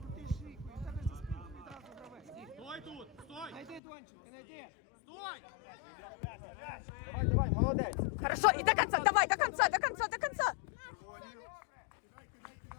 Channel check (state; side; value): drops out; right; at 3.8 s